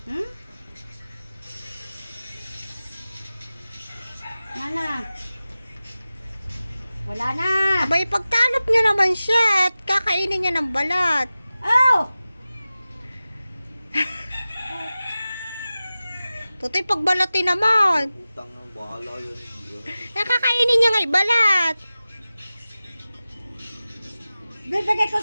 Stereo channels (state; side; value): inverted; both; correlation -0.95